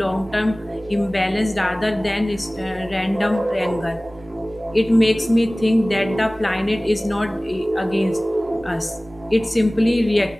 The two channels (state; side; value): normal; both; correlation 0.98